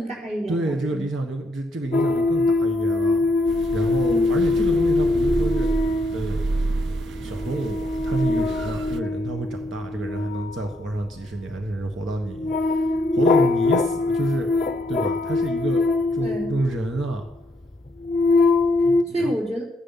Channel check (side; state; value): both; normal; correlation 0.75